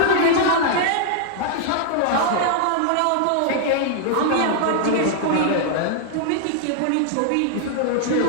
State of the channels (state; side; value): different; both; correlation 0.00